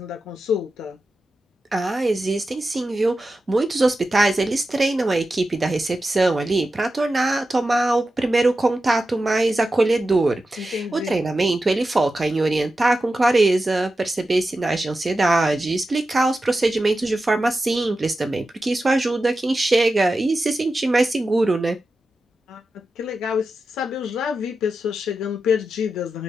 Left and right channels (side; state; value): both; normal; correlation 0.91